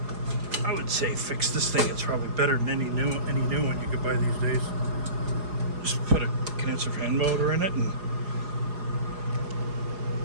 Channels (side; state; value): left; late; 4.8 ms